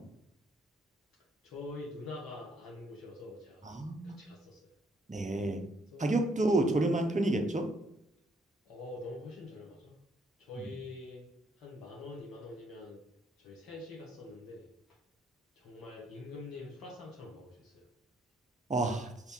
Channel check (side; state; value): both; normal; correlation 0.70